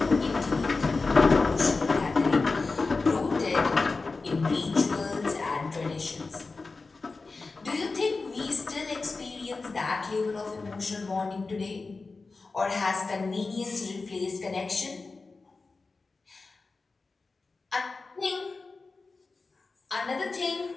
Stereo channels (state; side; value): quieter; right; 3.9 dB